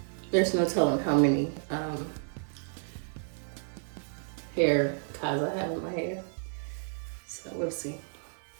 There's no telling how many hair ties I have in my hair. So we'll see.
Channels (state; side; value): silent; left; 57 dB below the other